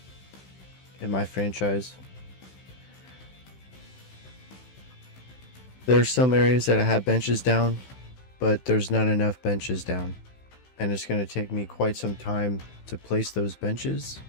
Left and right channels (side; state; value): right; late; 16 ms